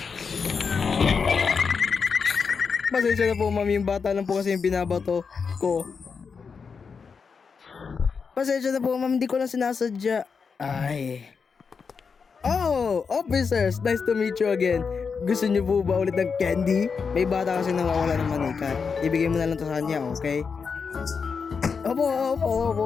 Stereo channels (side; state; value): right; quieter; 5.6 dB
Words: Pasensya na po mami, yung bata lang po kasi yung binabato ko. Pasensya na po mami, hindi ko lang sinasadya. Ay. Oh, officers, nice to meet you again. Gusto niyo po ba ulit ng candy? May bata kasi nawawala ng manika. Ibigay mo na lang to sa kanya, okay?